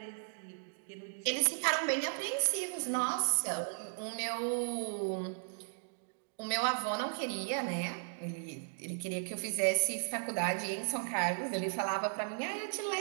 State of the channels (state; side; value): silent; left; digital silence